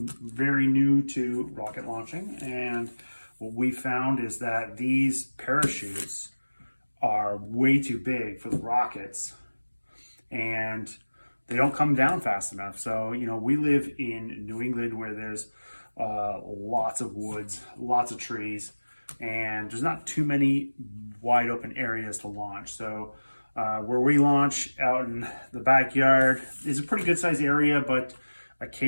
new to rocket launching, and what we found is that these parachutes are way too big for the rockets, and they don't come down fast enough. So, we live in New England where there's lots of woods, lots of trees, and there's not too many wide open areas to launch. So where we launch out in the backyard is a pretty good sized area, but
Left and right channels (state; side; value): inverted; both; correlation -1.00